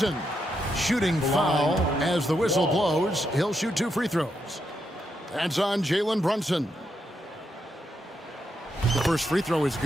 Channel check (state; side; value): normal; both; correlation 0.82